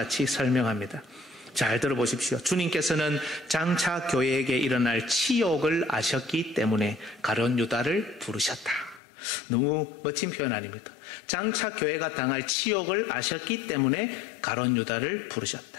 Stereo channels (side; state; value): right; drops out; at 9.0 s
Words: 설명합니다. 잘 들어보십시오. 주님께서는 장차 교회에게 일어날 치욕을 아셨기 때문에 가롯 유다를 부르셨다. 너무 멋진 표현 아닙니까? 장차 교회가 당할 치욕을 아셨기 때문에 가롯 유다를